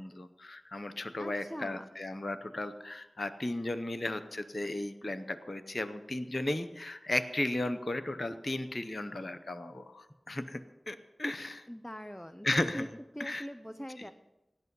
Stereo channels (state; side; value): normal; both; correlation 0.96